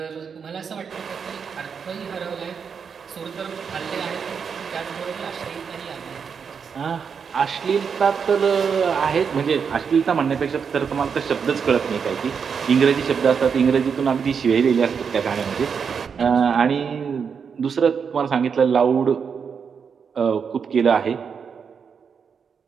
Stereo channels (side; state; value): left; quieter; 6.4 dB